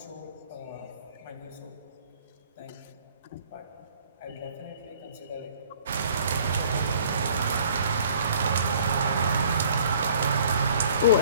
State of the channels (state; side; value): inverted; both; correlation -0.55